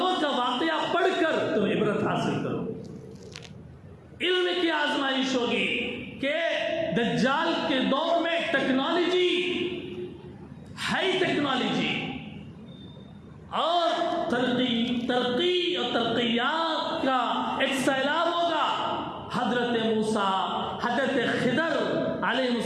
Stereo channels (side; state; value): both; identical; correlation 1.00